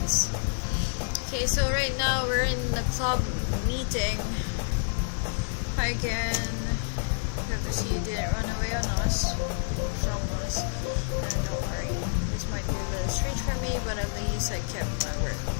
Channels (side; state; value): right; silent; digital silence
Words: Okay, so right now we're in the club meeting. Hi again. Hope to see you didn't run away on us, from us. And don't worry, this might be a little strange for me, but at least I kept my word.